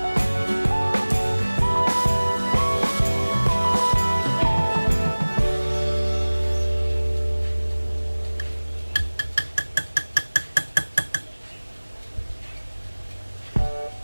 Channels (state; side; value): inverted; both; correlation -1.00